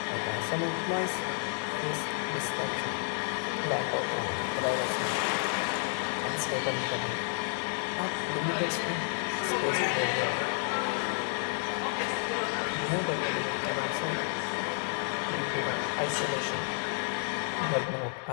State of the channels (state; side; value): silent; right; 57 dB below the other